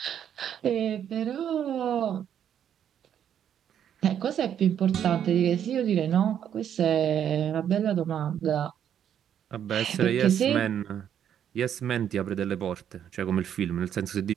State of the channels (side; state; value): left; quieter; 9.4 dB